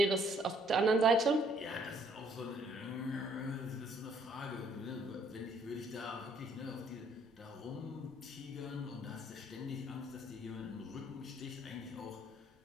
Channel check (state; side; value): normal; both; correlation 0.64